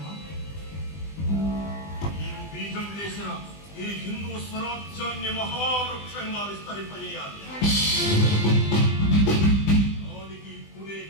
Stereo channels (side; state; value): right; late; 20 ms